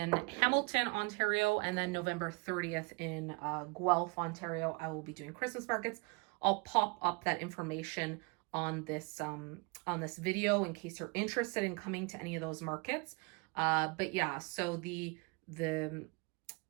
Hamilton, Ontario, and then November 30th in Guelph, Ontario, I will be doing Christmas markets. I'll pop up that information on this video in case you're interested in coming to any of those markets. But yeah, so the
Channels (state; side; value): quieter; left; 30.6 dB